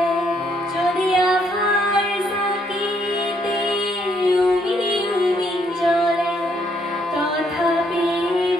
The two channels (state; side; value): normal; both; correlation 0.71